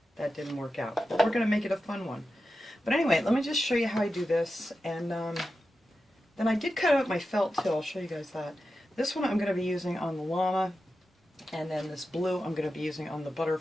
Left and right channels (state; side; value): normal; both; correlation 0.91